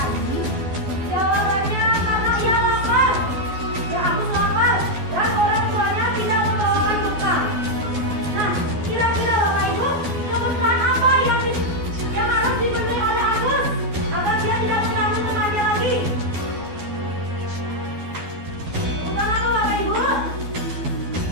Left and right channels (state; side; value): late; left; 12 ms